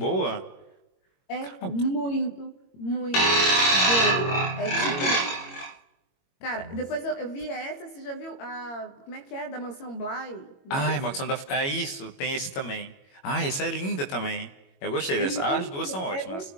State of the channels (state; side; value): late; right; 21 ms